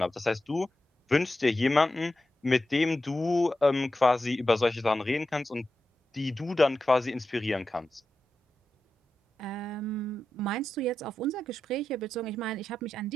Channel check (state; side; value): normal; both; correlation 0.90